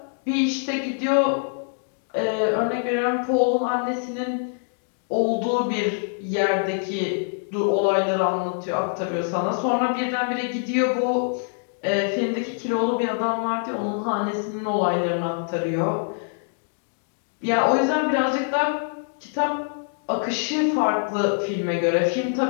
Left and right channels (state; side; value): silent; right; digital silence